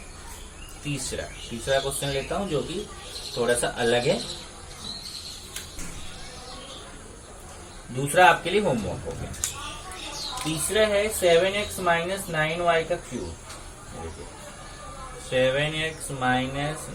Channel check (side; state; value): both; identical; correlation 1.00